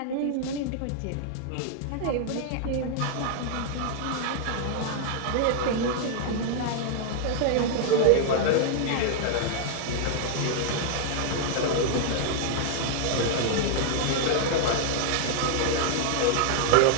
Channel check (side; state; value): both; different; correlation 0.00